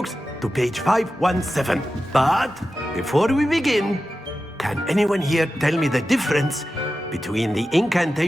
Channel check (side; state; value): both; normal; correlation 0.93